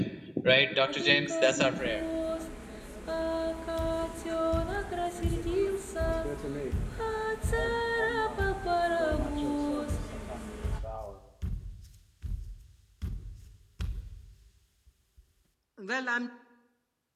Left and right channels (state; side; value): identical; both; correlation 1.00